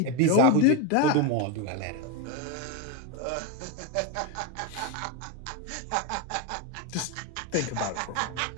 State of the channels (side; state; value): both; different; correlation 0.02